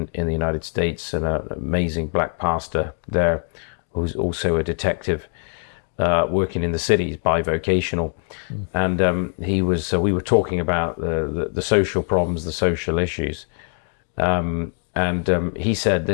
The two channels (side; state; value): right; silent; digital silence